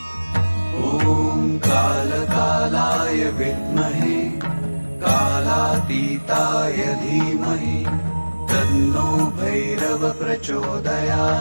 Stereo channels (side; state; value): both; inverted; correlation -1.00